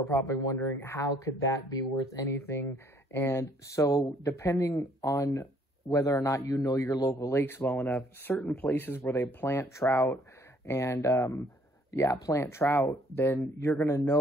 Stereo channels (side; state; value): both; normal; correlation 0.63